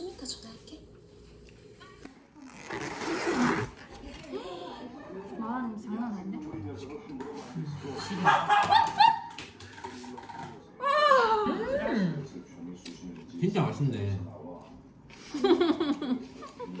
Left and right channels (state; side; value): identical; both; correlation 1.00